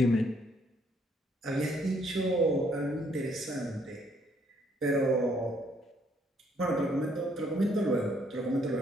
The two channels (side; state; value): both; normal; correlation 0.68